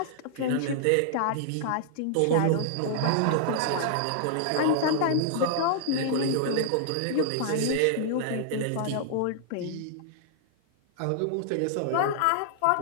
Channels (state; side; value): different; both; correlation -0.01